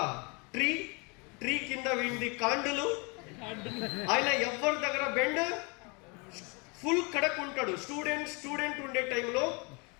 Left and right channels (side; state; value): right; quieter; 31.1 dB